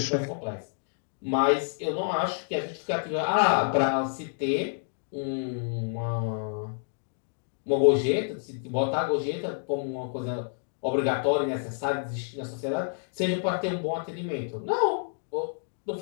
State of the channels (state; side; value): silent; right; digital silence